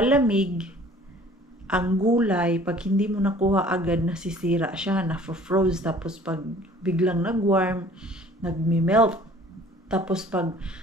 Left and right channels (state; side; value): normal; both; correlation 0.51